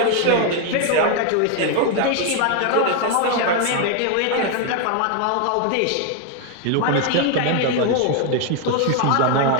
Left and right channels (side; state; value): both; different; correlation 0.01